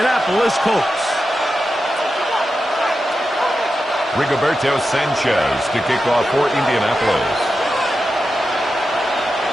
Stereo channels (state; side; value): normal; both; correlation 0.90